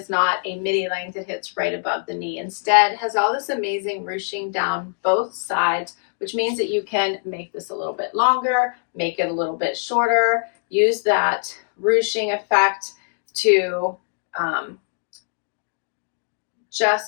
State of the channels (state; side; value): silent; right; digital silence